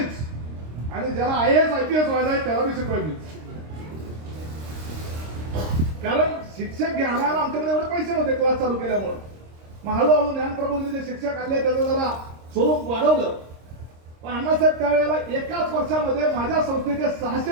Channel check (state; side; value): late; left; 26 ms